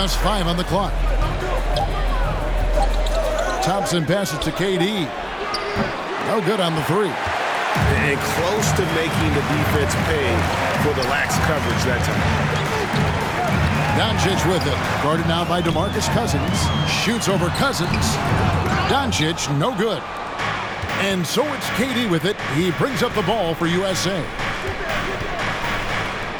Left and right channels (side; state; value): both; identical; correlation 1.00